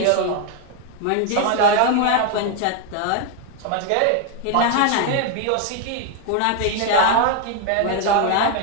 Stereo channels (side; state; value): both; different; correlation 0.01